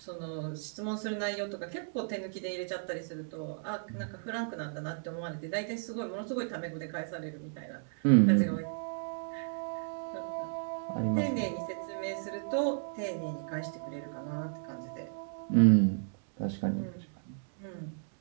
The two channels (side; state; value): left; silent; digital silence